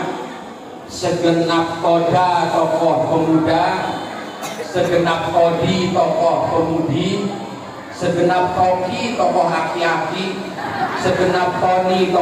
segenap toda tokoh pemuda, segenap todi tokoh pemudi, segenap toki tokoh aki-aki, segenap toni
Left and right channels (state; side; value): identical; both; correlation 1.00